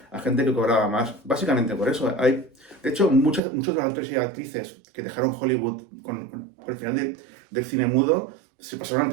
a gente que cobraba más. Básicamente por eso. De hecho, muchos de los actores y actrices que dejaron Hollywood con el final del cine mudo se pasaron al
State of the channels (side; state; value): left; drops out; at 3.4 s